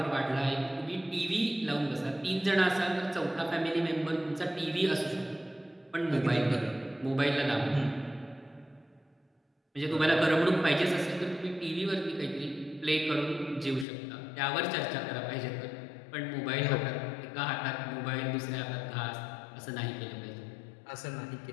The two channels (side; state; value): right; drops out; at 13.9 s